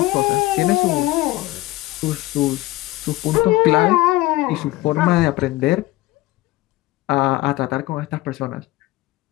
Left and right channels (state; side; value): quieter; right; 18.3 dB